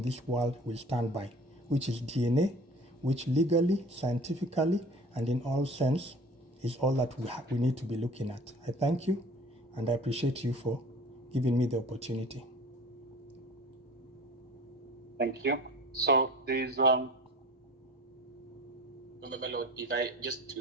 this world will stand by, which is DNA, which legally, scientifically, and in all sense is all that we need to be looking at. I thank you, and I appreciate you for giving me the opportunity. Thank you. So there is my lord, if I just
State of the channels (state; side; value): normal; both; correlation 0.43